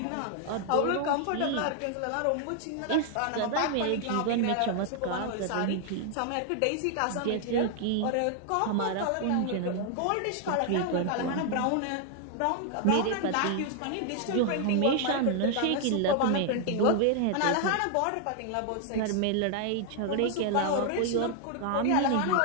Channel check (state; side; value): different; both; correlation 0.00